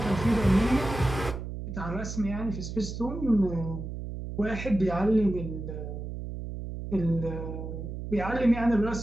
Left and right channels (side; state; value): right; noise; hum, 7 dB below the sound